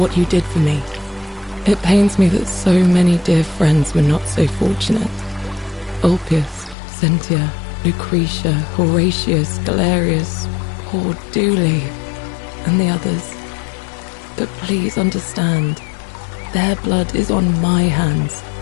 you did for me. It pains me that so many dear friends were not so fortunate. Ulpius, Cynthia, Lucretia, Horatius, Galerius, poor Dooley, and the others. But please understand, their blood is on my hands,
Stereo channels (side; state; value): right; drops out; at 6.8 s